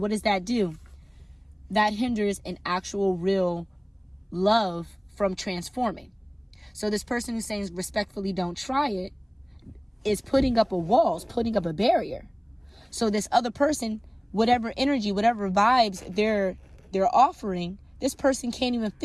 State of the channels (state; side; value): identical; both; correlation 1.00